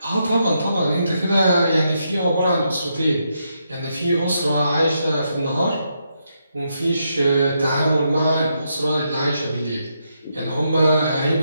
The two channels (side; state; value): both; inverted; correlation -0.81